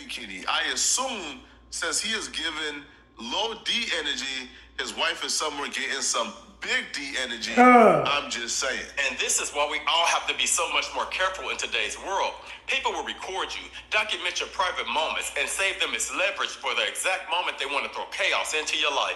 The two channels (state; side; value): identical; both; correlation 1.00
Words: I assume since he is given low D energy, his wife is somewhere getting some big D energy. I'm just saying. And this is why we all have to be so much more careful in today's world. People will record you, document your private moments, and save them as leverage for the exact moment they want to throw chaos into your